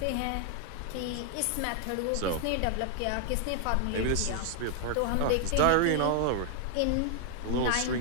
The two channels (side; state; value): both; different; correlation 0.00